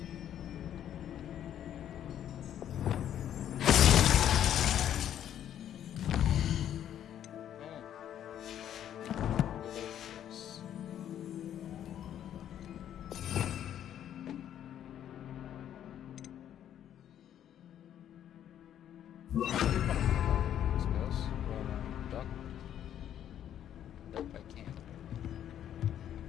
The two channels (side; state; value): right; quieter; 10.5 dB